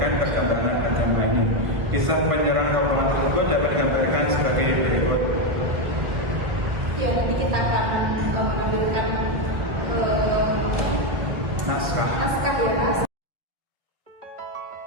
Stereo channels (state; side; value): late; left; 1.6 ms